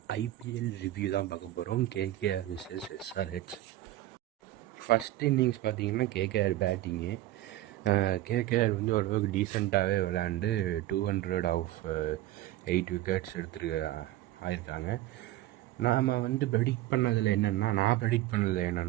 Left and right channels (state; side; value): quieter; left; 15.2 dB